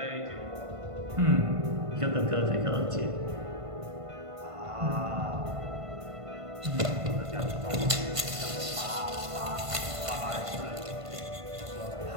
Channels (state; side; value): late; left; 1.5 ms